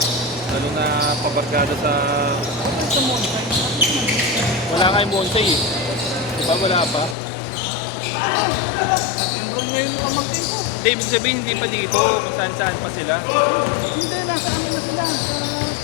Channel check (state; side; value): drops out; right; at 7.2 s